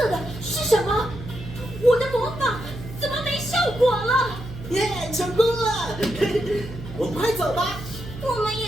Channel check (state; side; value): noise; right; hum, 12 dB below the sound